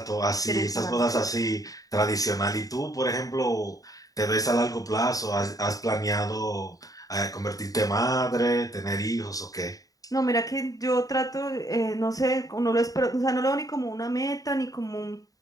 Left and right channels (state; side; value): late; right; 0.17 ms